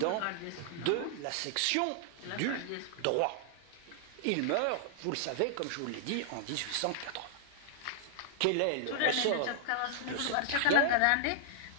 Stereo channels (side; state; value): both; different; correlation -0.01